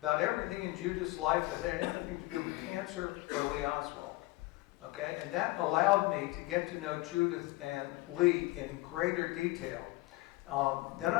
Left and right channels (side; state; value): right; quieter; 20.5 dB